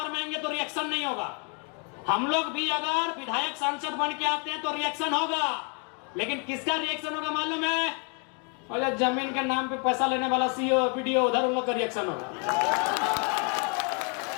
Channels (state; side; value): quieter; right; 37.7 dB